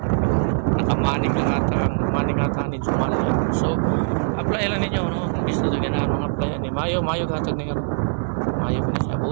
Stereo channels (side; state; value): left; silent; digital silence